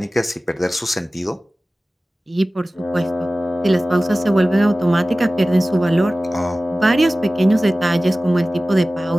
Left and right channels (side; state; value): both; normal; correlation 0.97